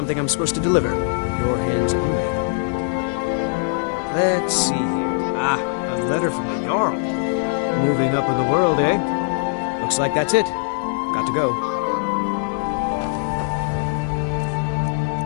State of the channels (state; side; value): silent; right; 65 dB below the other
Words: I'm supposed to deliver. Your hands only. Let's see here. Ah, a letter from the Jarl. Moving up in the world, eh? Looks like that's it. Got to go.